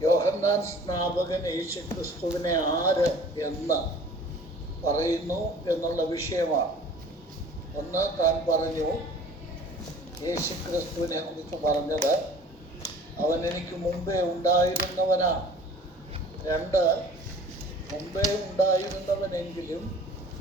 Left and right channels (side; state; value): both; normal; correlation 0.48